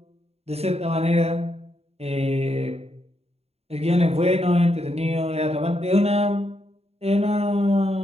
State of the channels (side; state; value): left; late; 0.30 ms